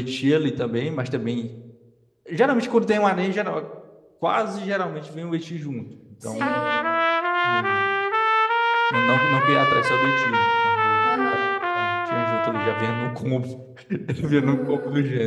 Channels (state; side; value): identical; both; correlation 1.00